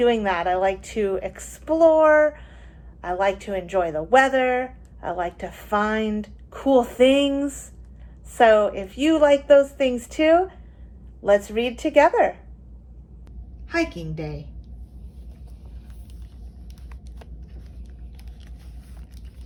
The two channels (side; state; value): both; identical; correlation 1.00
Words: that. I like to explore, I like to enjoy the weather, I like to find cool things. So if you like those things too, let's read together. Hiking Day.